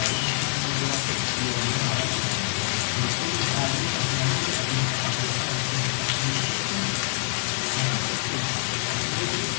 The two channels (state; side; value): silent; right; 61 dB below the other